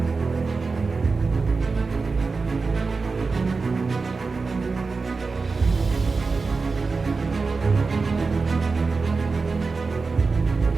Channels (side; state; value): left; quieter; 4.3 dB